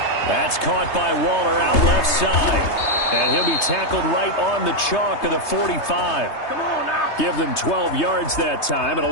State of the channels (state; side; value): late; right; 3.3 ms